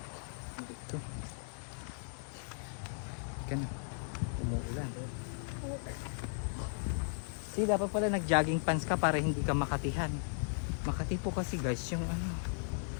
Dito. Ika na. Umuulan. See, dapat pala nag-jogging pants ka para hindi ka makatihan. Makati po kasi guys yung ano.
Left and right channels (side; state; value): right; silent; 53 dB below the other